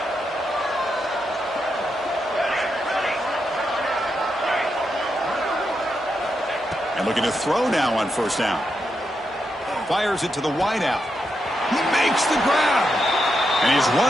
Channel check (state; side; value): normal; both; correlation 0.84